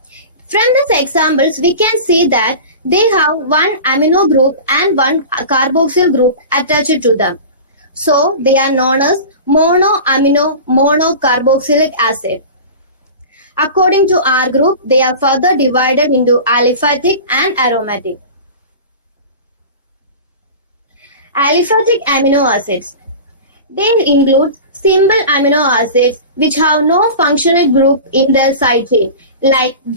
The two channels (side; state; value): both; inverted; correlation -0.34